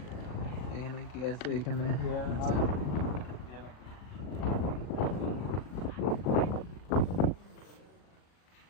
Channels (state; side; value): late; right; 39 ms